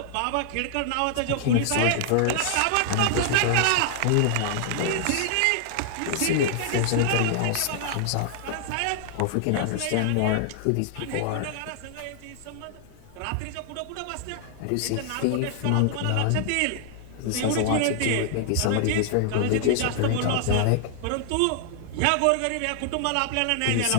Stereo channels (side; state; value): both; different; correlation -0.01